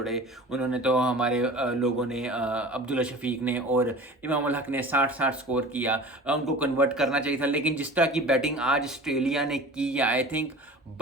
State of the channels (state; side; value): normal; both; correlation 0.40